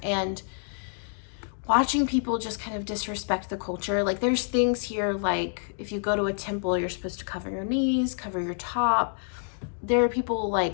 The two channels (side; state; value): right; silent; 60 dB below the other